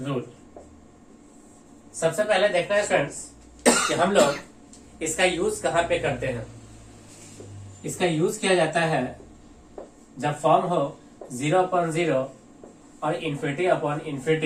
सबसे पहले देखना है स्टूडेंट्स कि हम लोग इसका यूज कहां पे करते हैं। इसका यूज किया जाता है जब फॉर्म हो 0/0 और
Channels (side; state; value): both; identical; correlation 1.00